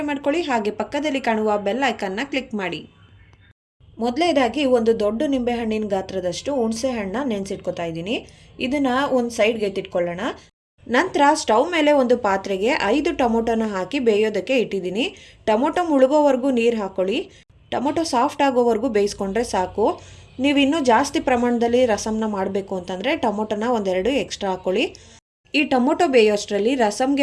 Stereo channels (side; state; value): both; identical; correlation 1.00